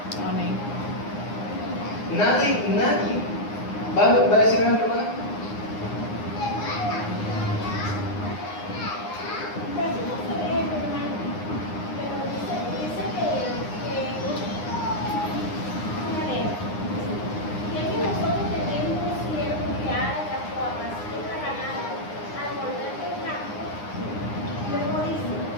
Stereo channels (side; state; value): right; late; 9.7 ms